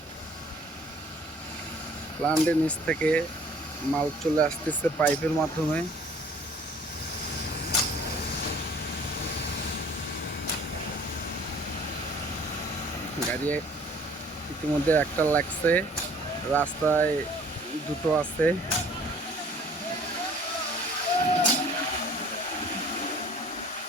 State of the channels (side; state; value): both; normal; correlation 0.53